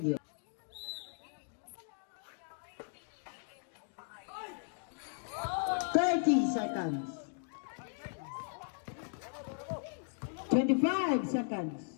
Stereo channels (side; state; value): right; silent; digital silence